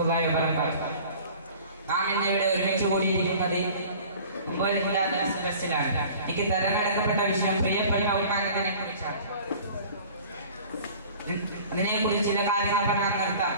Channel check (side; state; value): both; inverted; correlation -0.46